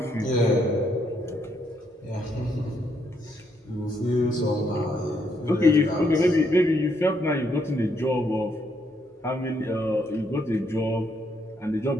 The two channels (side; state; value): both; normal; correlation 0.74